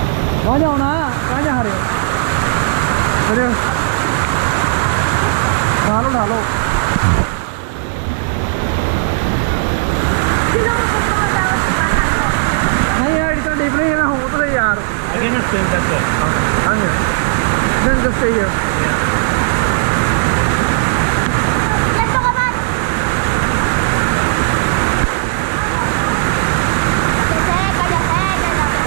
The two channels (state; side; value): silent; left; digital silence